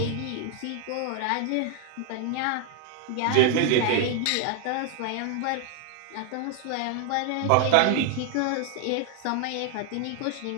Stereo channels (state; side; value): different; both; correlation 0.00